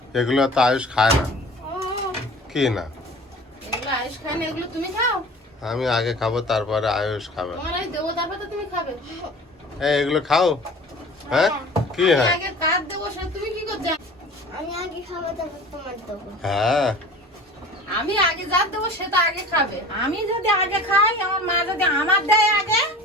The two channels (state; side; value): normal; both; correlation 0.41